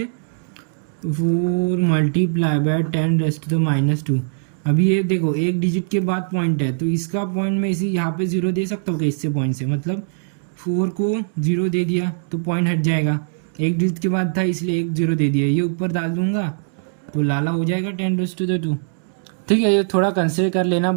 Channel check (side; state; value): left; silent; digital silence